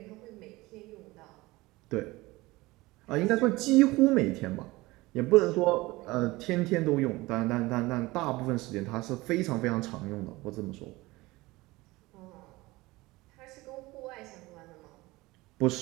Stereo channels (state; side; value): quieter; left; 20.7 dB